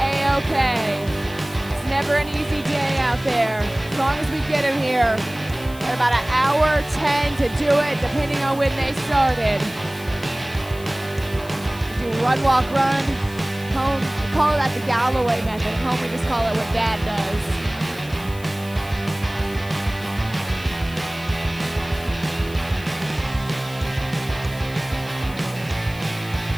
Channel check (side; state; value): left; noise; hiss, 19 dB below the sound